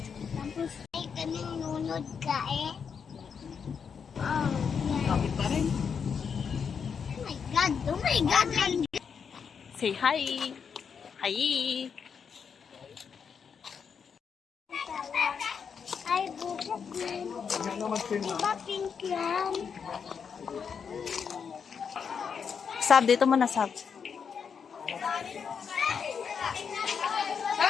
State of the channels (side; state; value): right; quieter; 6.6 dB